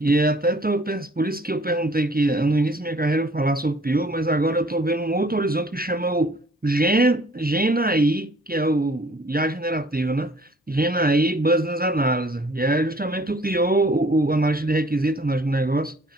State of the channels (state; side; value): normal; both; correlation 0.56